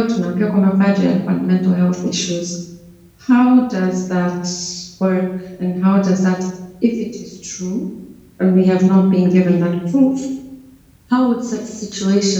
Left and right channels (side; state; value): both; identical; correlation 1.00